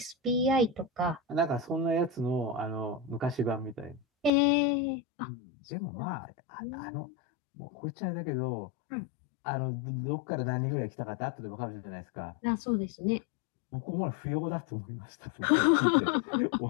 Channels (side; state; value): right; drops out; at 4.3 s